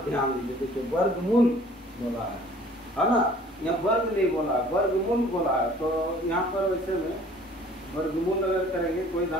ध्यान दीजिए। देखिए वर्गमूल बोला है ना, यहाँ वर्ग नहीं बोला, वर्गमूल बोला है। तो यहाँ पर वैसे में वर्गमूल अगर करेंगे कोई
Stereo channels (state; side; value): normal; both; correlation 0.53